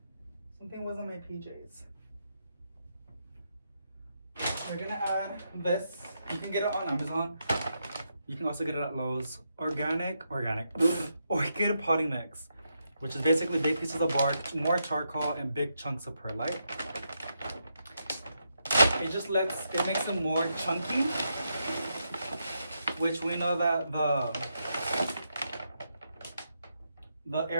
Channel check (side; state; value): both; inverted; correlation -0.82